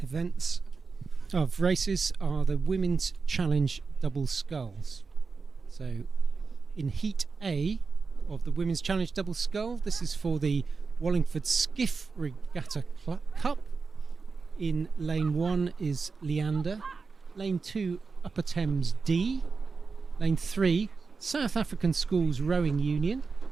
races are the Women's Challenge Double Sculls. So in Heat A of the Women's Challenge Double Scull, this is for the Wallingford Skiff Regatta Cup. In Lane 1 is Leander, Lane 2 Upper Thames D, Lane 3 South African Schools Rowing Union,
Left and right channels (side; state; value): left; quieter; 4.7 dB